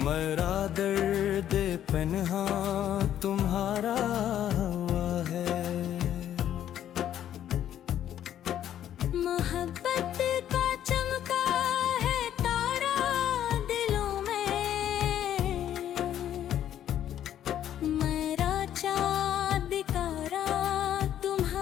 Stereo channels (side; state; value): right; quieter; 10.9 dB